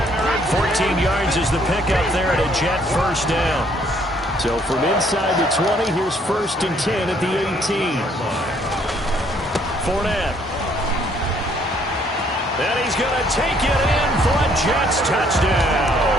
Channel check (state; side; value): normal; both; correlation 0.65